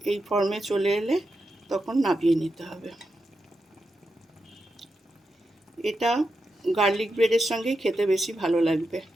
এই ফর্মে চলে এলে তখন নামিয়ে নিতে হবে। এটা গার্লিক ব্রেডের সঙ্গেই খেতে বেশি ভালো লাগবে।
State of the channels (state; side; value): normal; both; correlation 0.87